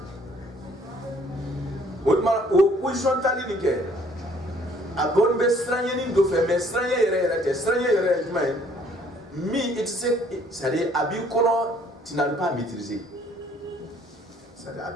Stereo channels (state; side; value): normal; both; correlation 0.60